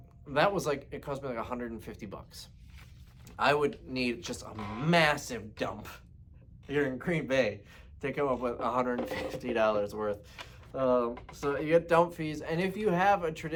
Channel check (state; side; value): identical; both; correlation 1.00